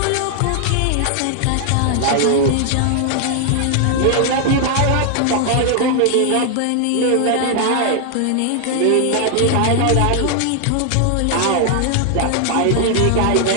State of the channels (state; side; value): different; both; correlation 0.00